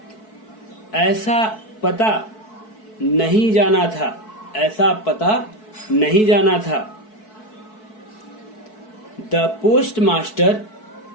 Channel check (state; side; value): late; right; 4.6 ms